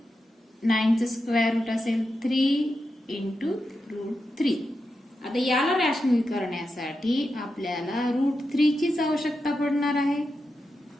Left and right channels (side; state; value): both; normal; correlation 0.88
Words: 9चं स्क्वेअर रूट असेल 3 इंटू रूट 3. आता याला rational करण्यासाठी आपल्याला route 3 चीच आवश्यकता पडणार आहे.